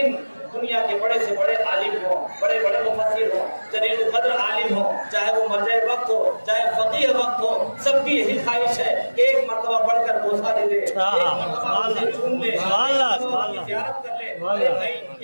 دنیا کے بڑے سے بڑے عالم ہوں، بڑے بڑے مفسر ہوں، جلیل القدر عالم ہوں، چاہے وہ مرجع وقت ہو، چاہے فقیہ وقت ہو، سب کی یہی خواہش ہے کہ ایک مرتبہ پڑھ کر بوسہ دے دے، ایک مرتبہ اسے چوم لے، زیارت کر لے۔ ارے بھائی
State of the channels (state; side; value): inverted; both; correlation -1.00